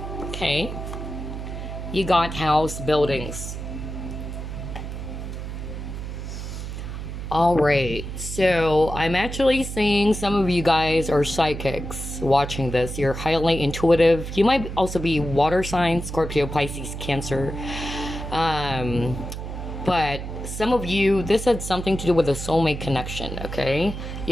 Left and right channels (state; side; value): noise; right; hum, 7 dB below the sound